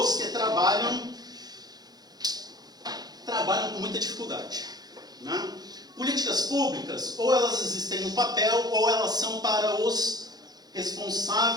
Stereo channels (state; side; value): late; left; 0.19 ms